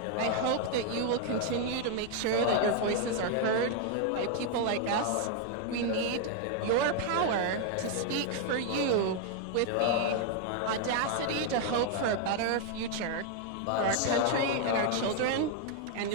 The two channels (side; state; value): both; different; correlation 0.00